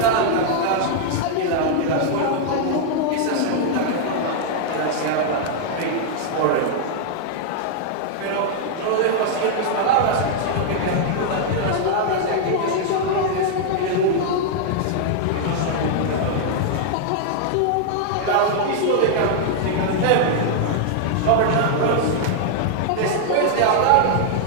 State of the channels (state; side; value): different; both; correlation -0.01